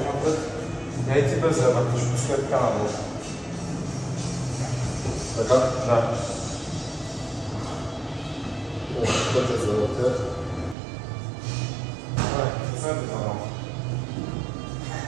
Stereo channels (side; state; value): left; drops out; at 10.8 s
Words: напред. Я и ти без да вътреш. Пускай така надолу. Така? Да. Пътя за вътре. Пуснете това малко.